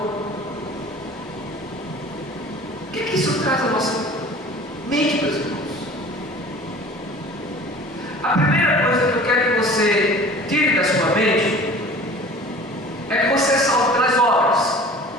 O que isso traz à nossa mente, meus irmãos? A primeira coisa que eu quero que você tire da sua mente é que você é salvo pelas obras.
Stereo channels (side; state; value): both; normal; correlation 0.44